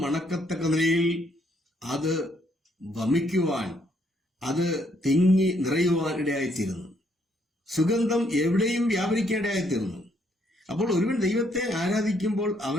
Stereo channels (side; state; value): both; normal; correlation 0.70